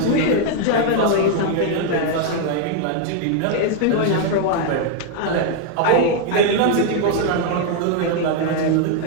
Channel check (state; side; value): different; both; correlation 0.00